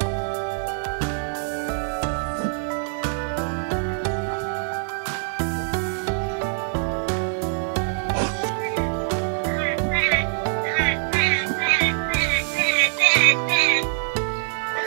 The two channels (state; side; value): silent; left; digital silence